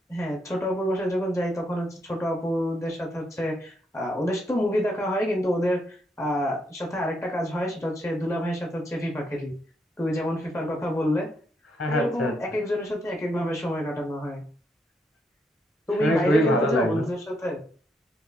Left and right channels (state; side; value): normal; both; correlation 0.77